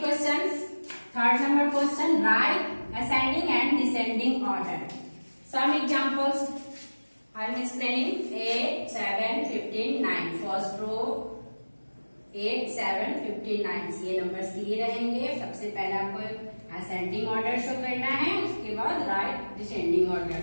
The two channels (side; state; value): both; inverted; correlation -1.00